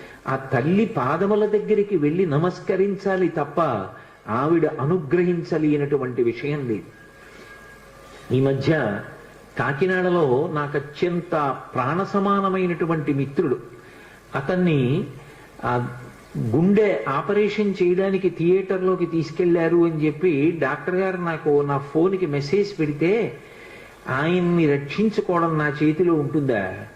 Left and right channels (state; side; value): identical; both; correlation 1.00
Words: ఆ తల్లి పాదముల దగ్గరికి వెళ్ళి నమస్కరించాలి తప్ప ఆవిడ అనుగ్రహించలేనటువంటి విషయం లేదు. ఈ మధ్య కాకినాడలో నాకు అత్యంత ప్రాణ సమానమైనటువంటి మిత్రుడు, అతన్ని గుండె ఆపరేషన్ చేయడానికి థియేటర్లోకి తీసుకెళ్లారు అని చెప్పి డాక్టర్ గారు నాకు నా ఫోన్కి మెసేజ్ పెడితే, ఆయన్ని రక్షించుకోవడం నా చేతిలో ఉంటుందా?